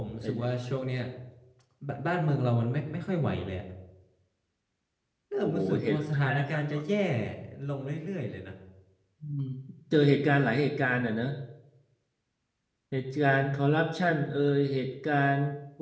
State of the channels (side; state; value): both; identical; correlation 1.00